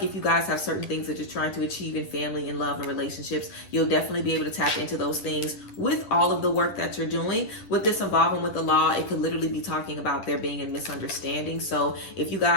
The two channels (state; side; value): late; right; 10 ms